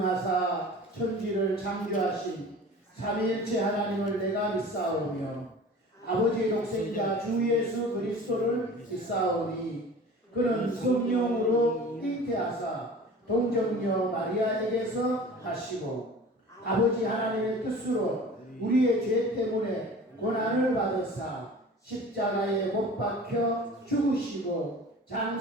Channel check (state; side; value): normal; both; correlation 0.41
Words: 천지를 창조하신 삼위일체 하나님을 내가 믿사오며 아버지의 독생자 주 예수 그리스도를 믿사오니 그는 성령으로 잉태하사 동정녀 마리아에게서 하시고 아버지 하나님의 뜻으로 우리의 죄 때문에 고난을 받으사 십자가에 못 박혀 죽으시고